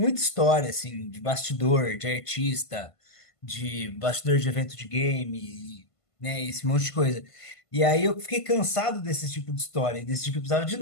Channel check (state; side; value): late; right; 1.5 ms